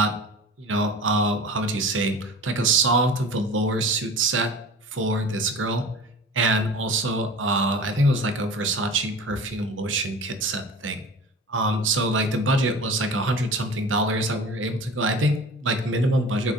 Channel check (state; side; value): normal; both; correlation 0.37